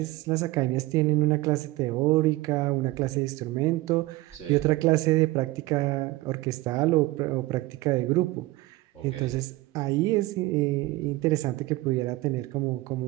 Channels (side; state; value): left; quieter; 19.3 dB